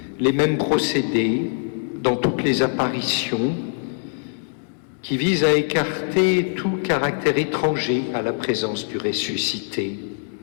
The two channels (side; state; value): right; silent; digital silence